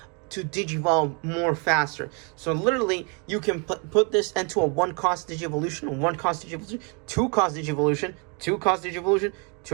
to Digivolve more faster. So literally, you can put this into a 1 cost Digi-Evolution, 1 cost Digi-Evolution, 2 cost Digi-Evolution, 2 cost Digi-Evolution,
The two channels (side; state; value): left; quieter; 34.9 dB